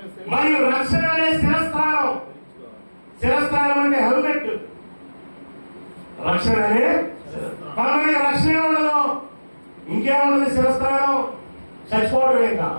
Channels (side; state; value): both; inverted; correlation -1.00